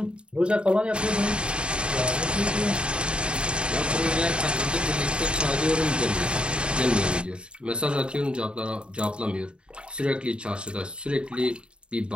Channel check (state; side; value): late; left; 0.054 ms